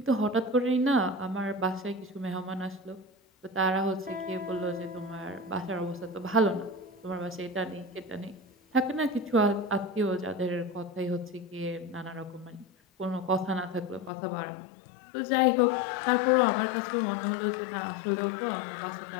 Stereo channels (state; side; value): drops out; right; at 14.1 s